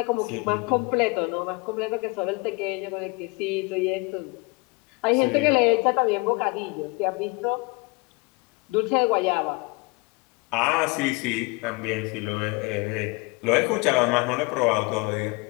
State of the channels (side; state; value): right; quieter; 27.4 dB